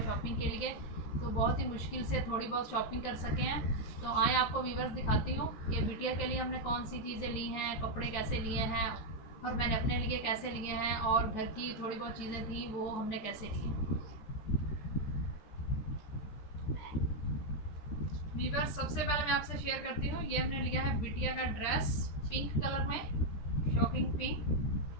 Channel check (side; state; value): right; late; 14 ms